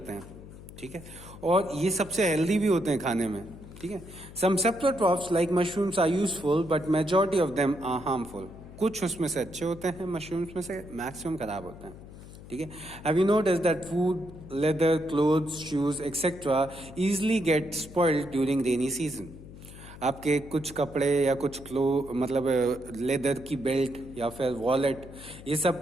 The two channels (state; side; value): noise; left; hum, 16 dB below the sound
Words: हैं. ठीक है, और ये सबसे हेल्दी भी होते हैं खाने में. ठीक है, सम saprotrophs like mushrooms are useful, but majority of them are harmful. कुछ उसमें से अच्छे होते हैं मशरूम्स में से, मैक्सिमम खराब होते हैं. ठीक है, have you noticed that food, leather, clothes, shoes, etc. easily get spoiled during rainy season? आपके कुछ कपड़े या कुछ मतलब लेदर की बेल्ट या फिर वॉलेट, ये सब